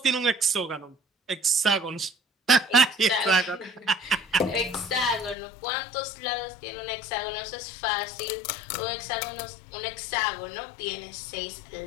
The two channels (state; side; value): drops out; right; at 5.4 s